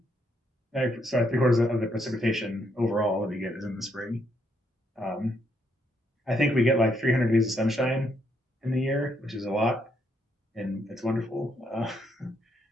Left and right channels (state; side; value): normal; both; correlation 0.75